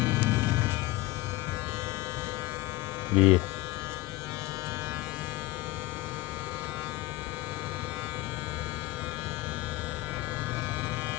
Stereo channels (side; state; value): right; quieter; 19.2 dB